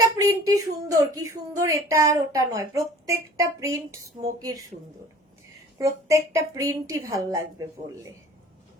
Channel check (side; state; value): both; normal; correlation 0.47